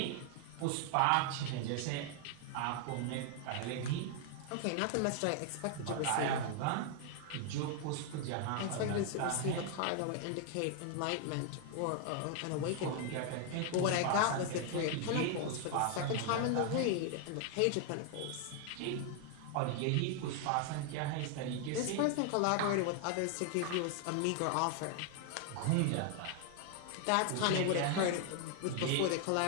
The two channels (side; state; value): both; different; correlation 0.00